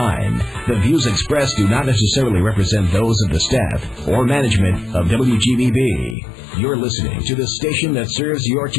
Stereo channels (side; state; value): right; drops out; at 6.2 s